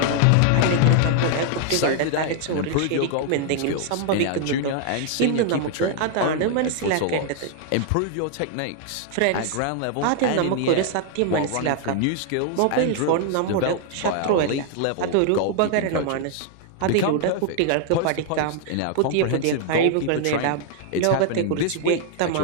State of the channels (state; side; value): different; both; correlation 0.00